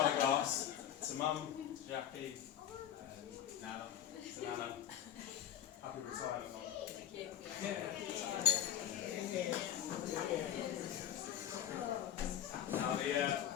glass to Mum, to Jacqui, Nana, to Nana. Happy retirement, Mum. Thank you. Now,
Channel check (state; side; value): quieter; right; 10.5 dB